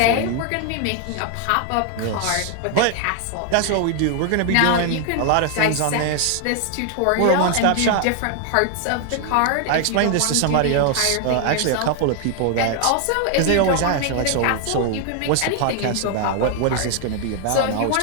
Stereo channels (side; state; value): both; different; correlation 0.00